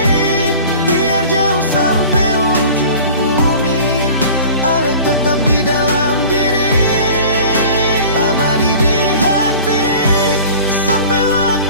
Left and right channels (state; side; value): inverted; both; correlation -0.42